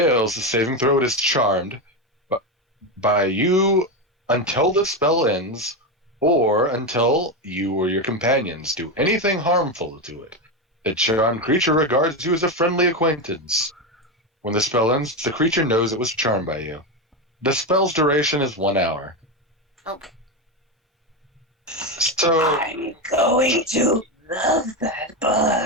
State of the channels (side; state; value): both; normal; correlation 0.13